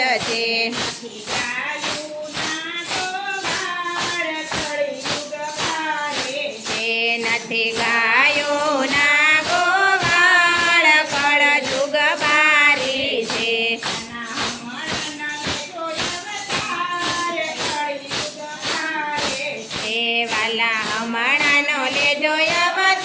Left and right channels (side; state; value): both; identical; correlation 1.00